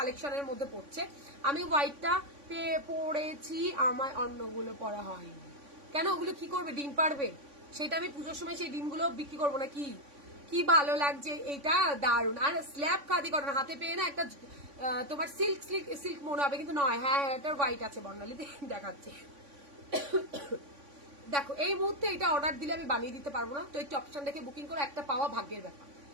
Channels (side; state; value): left; late; 3.5 ms